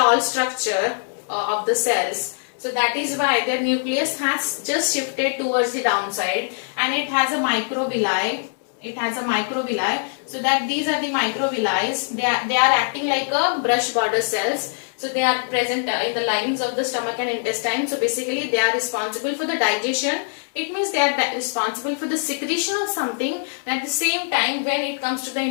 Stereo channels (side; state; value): right; silent; digital silence